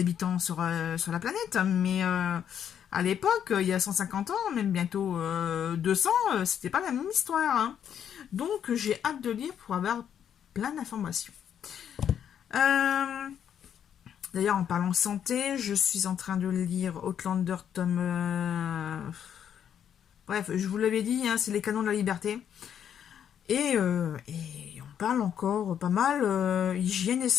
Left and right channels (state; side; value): quieter; right; 9.0 dB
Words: sur la planète, mais à l'époque, il y a 150 ans, même bientôt 200, c'était pas la même histoire. Hein. Donc, j'ai hâte de lire pour avoir plein d'informations. D'ailleurs, en parlant santé, je suis en train de lire Outlander tome... Bref, je vous l'avais dit, hein, c'est les canons de la liberté. Et on parle encore pas mal hygiène et